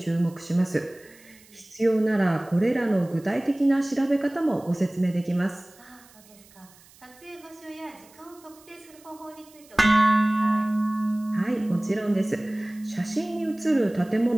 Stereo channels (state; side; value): noise; right; hiss, 26 dB below the sound